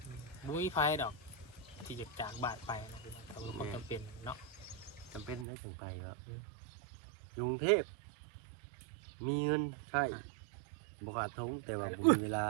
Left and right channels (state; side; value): drops out; left; at 5.5 s